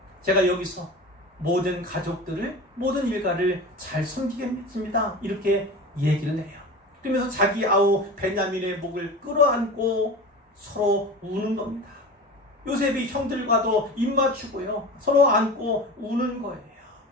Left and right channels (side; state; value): both; normal; correlation 0.32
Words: 제가 여기서 모든 가족들을, 모든 일가를 잘 섬기겠습니다. 이렇게 얘기를 해요. 그러면서 자기 아우 베냐민의 목을 끌어안고 서로 우는 겁니다. 요셉이 형들과도 입맞추고요. 서로 안고 우는 거예요.